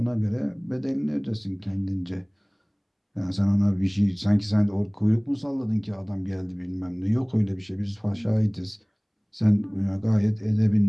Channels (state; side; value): identical; both; correlation 1.00